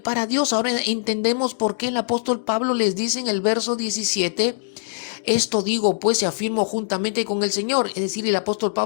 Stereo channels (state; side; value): silent; right; digital silence